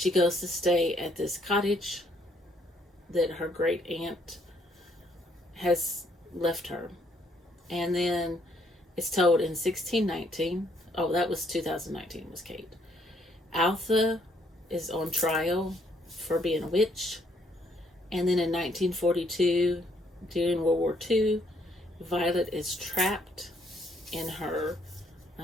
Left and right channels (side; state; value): both; normal; correlation 0.69